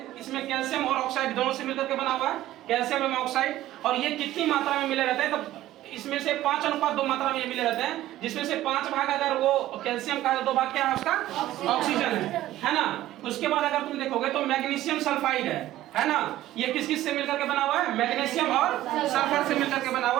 इसमें कैल्शियम और ऑक्साइड दोनों से मिलकर के बना हुआ है कैल्शियम एवं ऑक्साइड। और ये कितनी मात्रा में मिले रहते हैं, तो इसमें से 5:2 मात्रा में ये मिले रहते हैं, जिसमें से 5 भाग अगर वो कैल्शियम का, 2 भाग क्या है उसका, ऑक्सीजन है ना। उसके बाद अगर तुम देखोगे तो मैग्नीशियम सल्फाइड है ना। ये किस किस से मिलकर के बना हुआ है, मैग्नीशियम और सल्फर से मिलकर के बना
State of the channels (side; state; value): left; quieter; 14.6 dB